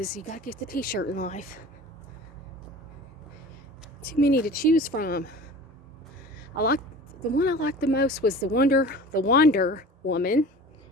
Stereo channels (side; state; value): both; normal; correlation 0.40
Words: you gotta get the t-shirt in life. Too many to choose from. The one I liked the most was the Wander Woman.